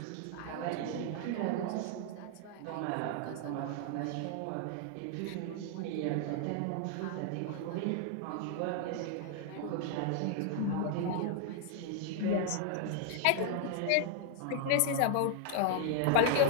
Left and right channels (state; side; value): different; both; correlation 0.00